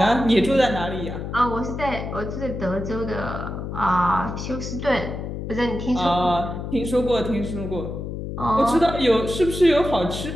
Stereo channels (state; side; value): noise; left; hum, 6 dB below the sound